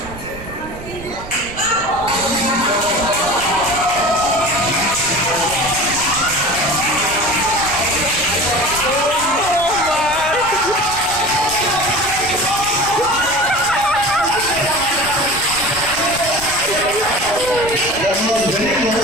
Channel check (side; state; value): right; noise; rumble, 14 dB below the sound